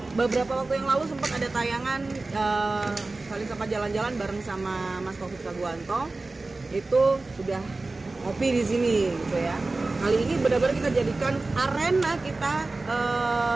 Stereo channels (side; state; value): left; quieter; 3.3 dB